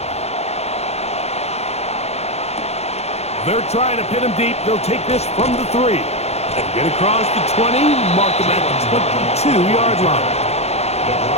They're trying to pin him deep. They'll take this from the 3. And get across the 20, mark him at the 22-yard line.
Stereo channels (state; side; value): late; right; 0.31 ms